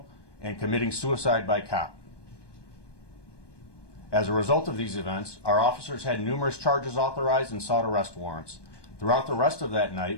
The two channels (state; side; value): late; right; 1.2 ms